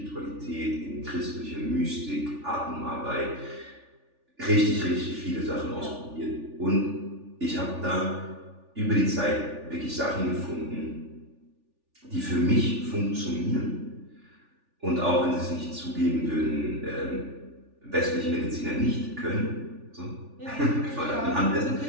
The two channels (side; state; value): left; late; 3.4 ms